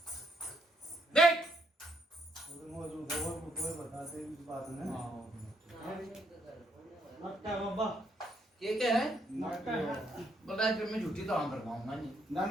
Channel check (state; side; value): normal; both; correlation 0.73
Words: देख बताते इस बात में। मक्का बाबा क्या है? नाटक बलराज फिर मैं झूठी तो आम करवाऊंगा नहीं। ना